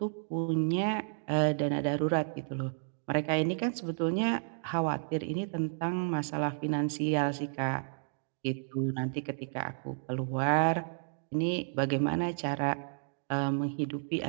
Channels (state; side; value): silent; left; digital silence